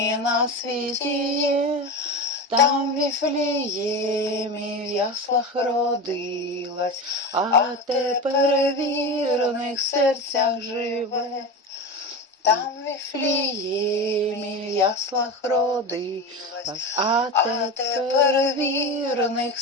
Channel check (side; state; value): both; normal; correlation 0.24